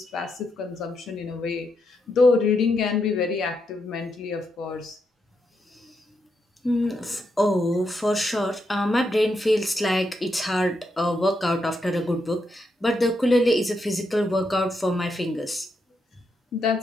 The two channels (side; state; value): both; normal; correlation 0.82